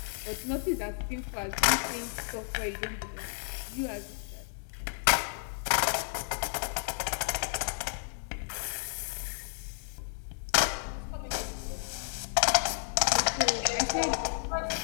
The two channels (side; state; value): right; silent; digital silence